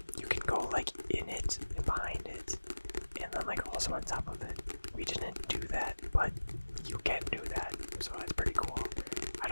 You can go like in it and behind it, and then like also on top of it. We didn't do that, but you can do that, so it's pretty cool. I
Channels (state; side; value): inverted; both; correlation -1.00